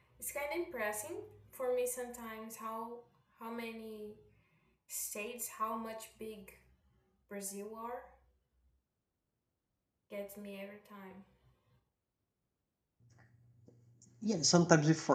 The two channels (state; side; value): identical; both; correlation 1.00